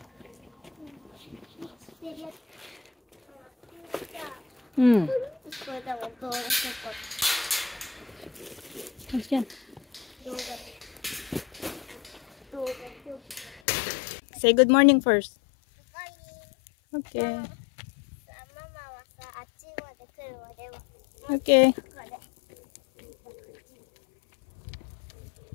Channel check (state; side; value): drops out; right; at 13.6 s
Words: Say good morning first. Okay. Okay.